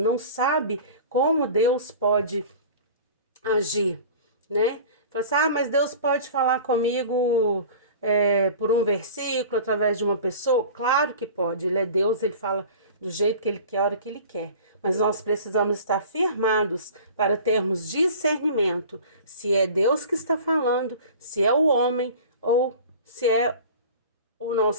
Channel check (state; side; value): inverted; both; correlation -0.40